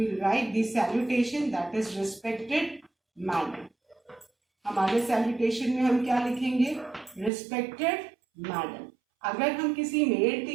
will write the salutation, that is respected madam. हमारे salutation में हम क्या लिखेंगे? Respected madam. अगर हम किसी मेल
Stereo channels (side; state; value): left; drops out; at 7.3 s